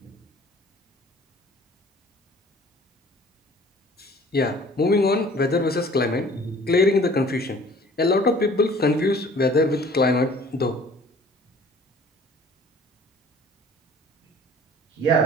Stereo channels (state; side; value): normal; both; correlation 0.51